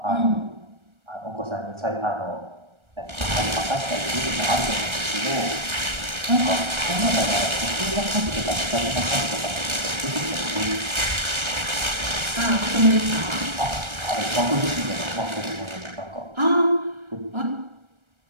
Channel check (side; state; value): left; late; 1.3 ms